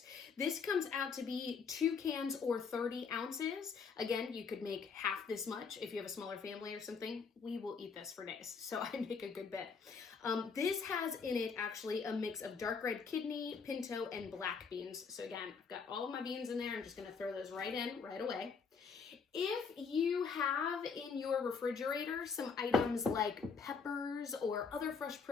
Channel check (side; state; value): right; quieter; 5.5 dB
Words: This comes out to be 2 cans or 30 ounces. Again, you could make half this much if you have a smaller family or something. We will eat this for days, so I make a good bit. This has in it actually a mix of dark red kidney, pinto, and black beans. So again, I've got all of my beans in there. I'm just gonna throw those right in right away. If you have in your refrigerator some items like peppers or other fresh